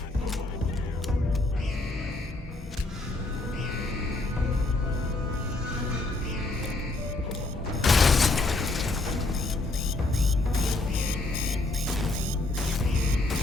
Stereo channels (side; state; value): right; quieter; 3.0 dB